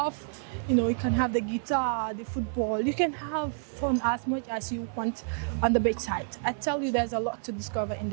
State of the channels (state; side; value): silent; left; digital silence